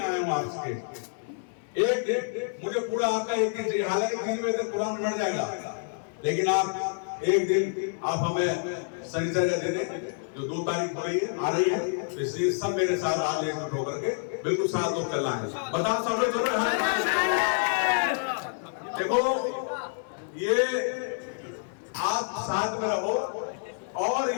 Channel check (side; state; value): right; silent; 59 dB below the other